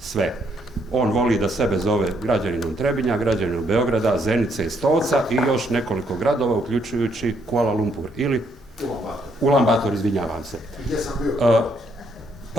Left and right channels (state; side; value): normal; both; correlation 0.72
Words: On voli da sebe zove građaninom Trebinja, građaninom Beograda, Zenice i Stolca i još nekoliko gradova, uključujući Kuala Lumpur ili Ulan Bator, izvinjavam se.